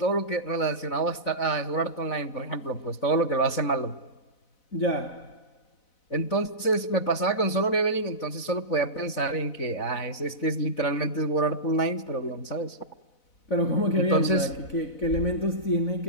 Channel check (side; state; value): right; late; 4.0 ms